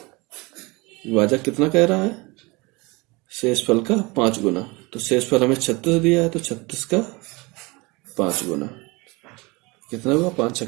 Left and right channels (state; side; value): quieter; left; 25.2 dB